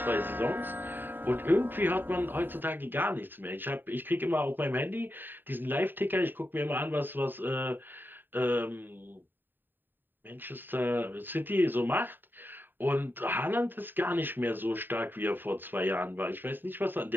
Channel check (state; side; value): late; left; 0.093 ms